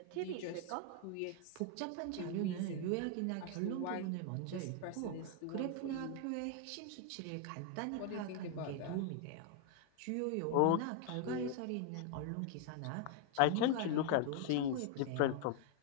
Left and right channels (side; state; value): both; different; correlation 0.00